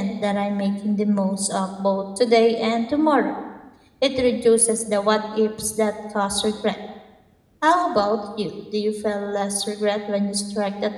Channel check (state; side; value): identical; both; correlation 1.00